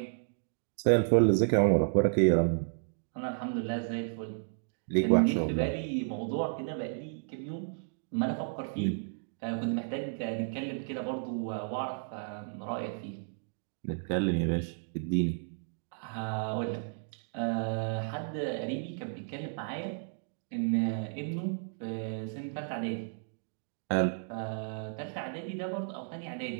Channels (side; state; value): left; silent; digital silence